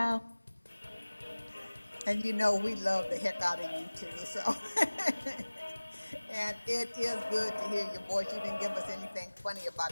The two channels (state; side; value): inverted; both; correlation -1.00